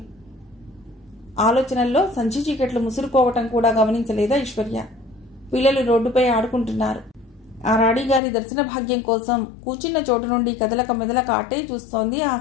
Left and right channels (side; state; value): right; drops out; at 8.2 s